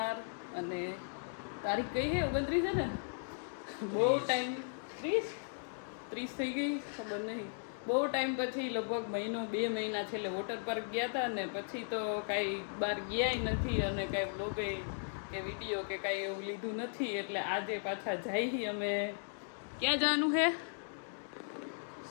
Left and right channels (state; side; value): silent; right; digital silence